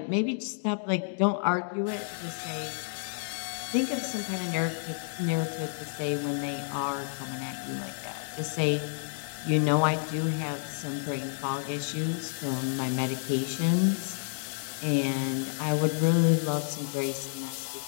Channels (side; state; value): right; silent; 58 dB below the other